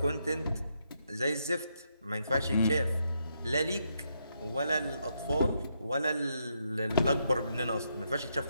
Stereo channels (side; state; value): both; inverted; correlation -0.79